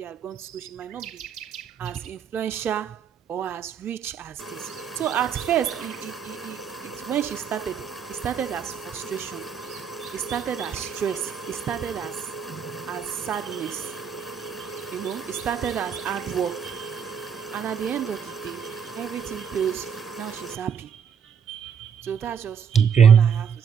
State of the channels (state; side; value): quieter; left; 7.3 dB